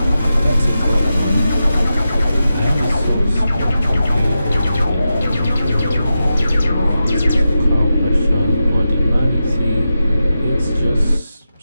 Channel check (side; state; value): both; inverted; correlation -0.90